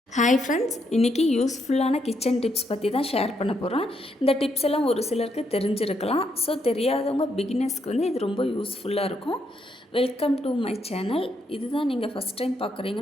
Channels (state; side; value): normal; both; correlation 0.77